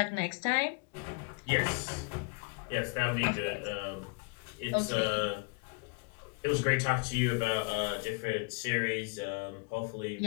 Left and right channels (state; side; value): quieter; right; 34.3 dB